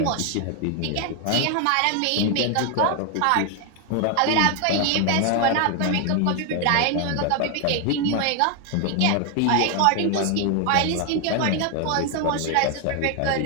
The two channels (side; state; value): both; different; correlation 0.01